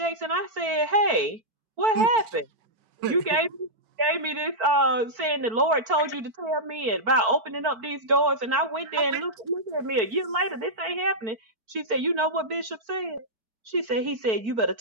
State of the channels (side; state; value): left; late; 4.5 ms